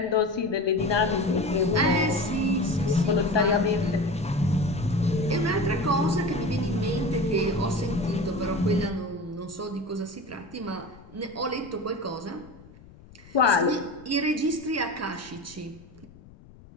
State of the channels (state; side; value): noise; left; rumble, 22 dB below the sound